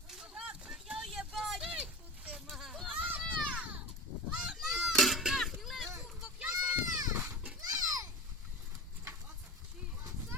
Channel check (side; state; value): both; normal; correlation 0.27